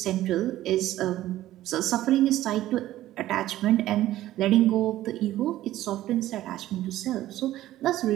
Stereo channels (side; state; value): left; quieter; 14.4 dB